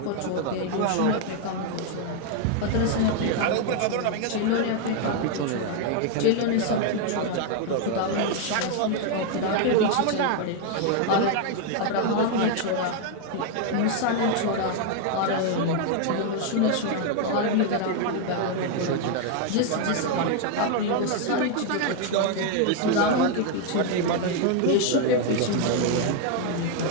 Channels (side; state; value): both; different; correlation 0.00